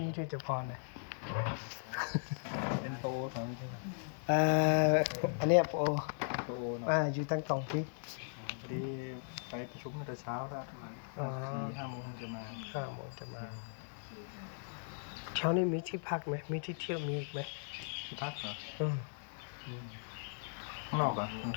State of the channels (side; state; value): right; silent; digital silence